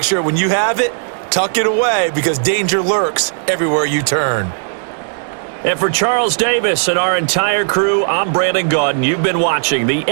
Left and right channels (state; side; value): silent; left; 57 dB below the other